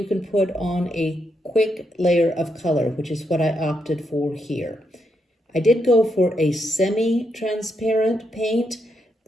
can put on a quick layer of color, which is what I opted for here. I did go for a semi-transparent paint.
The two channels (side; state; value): both; normal; correlation 0.80